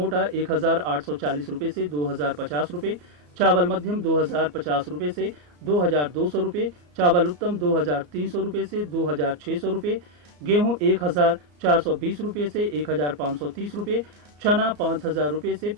1840 रुपए से 2050 रुपए, चावल मध्यम 2050 रुपए से 2200 रुपए, चावल उत्तम 2300 रुपए से 2600 रुपए, गेहूं 1420 रुपए से 1530 रुपए, चना 5000 रुपए से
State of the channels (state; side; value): late; left; 34 ms